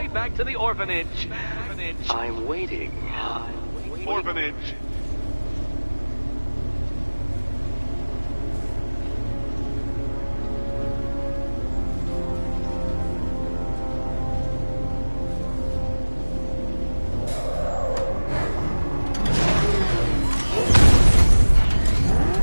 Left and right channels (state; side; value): inverted; both; correlation -1.00